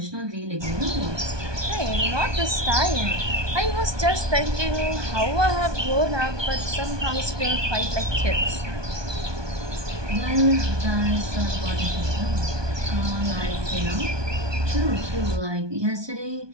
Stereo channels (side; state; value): left; late; 1.2 ms